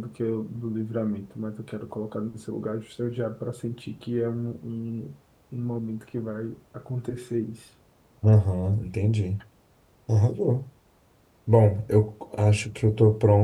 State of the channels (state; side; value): identical; both; correlation 1.00